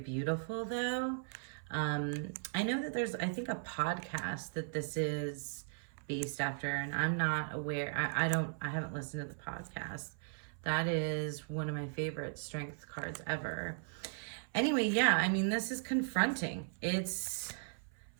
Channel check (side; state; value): left; silent; 53 dB below the other